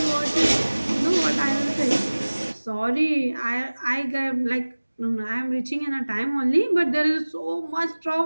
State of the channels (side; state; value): both; inverted; correlation -1.00